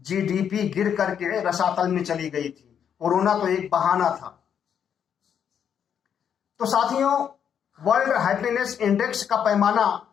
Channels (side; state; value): right; quieter; 8.3 dB